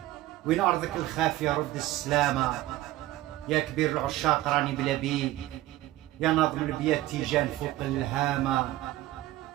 وين أرضك الخافية رد السلامة، يا كبير العشاق راني بلا بيك، يا ناظم البيات تيجان فوق الهامة.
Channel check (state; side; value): quieter; left; 15.9 dB